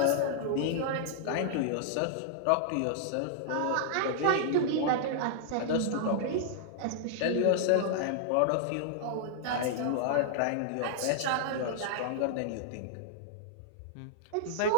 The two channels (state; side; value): different; both; correlation -0.01